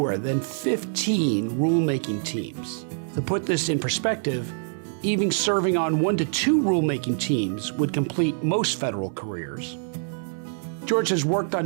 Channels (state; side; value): silent; left; digital silence